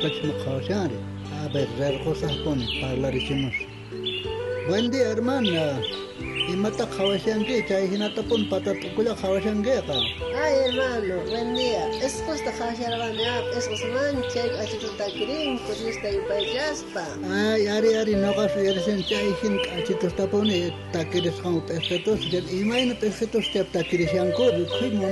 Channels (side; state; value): both; identical; correlation 1.00